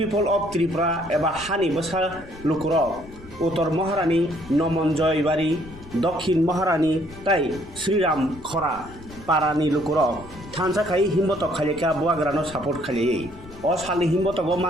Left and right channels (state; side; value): noise; left; rumble, 19 dB below the sound